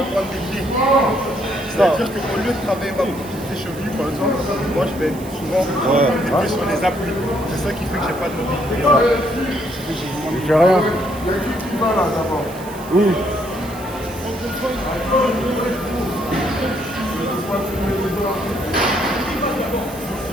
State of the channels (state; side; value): noise; right; hiss, 19 dB below the sound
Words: des pieds. C'est-à-dire qu'au lieu de travailler ma mobilité cheville, par exemple, moi je vais souvent des pieds sur les appuis. C'est ça qui fait que j'ai pas de mobilité. Il fait rien. Oui.